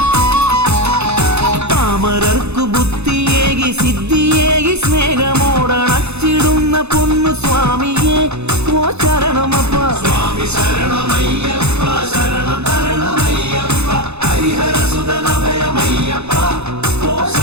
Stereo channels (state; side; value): late; left; 0.81 ms